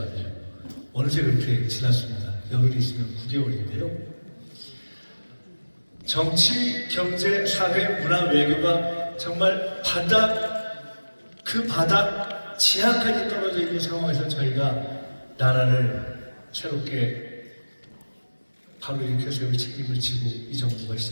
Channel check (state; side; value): inverted; both; correlation -1.00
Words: 어느새 그렇게 지났습니다. 열흘이 있으면 9개월인데요. 정치, 경제, 사회, 문화, 외교가 정말 그 바닥 지하까지 떨어져 있는 상황에서 저희가 나라를 새롭게 바로 일으켜 세울 책임을 지고 이 정부가